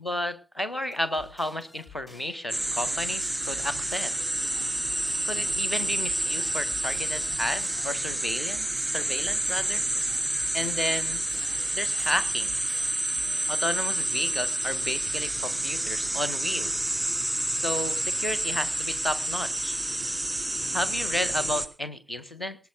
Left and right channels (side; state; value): both; normal; correlation 0.90